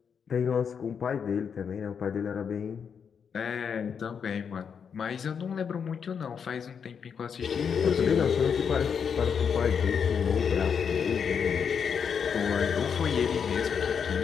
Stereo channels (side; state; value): right; quieter; 6.9 dB